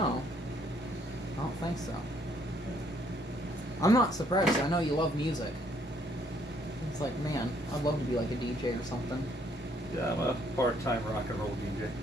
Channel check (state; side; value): normal; both; correlation 0.67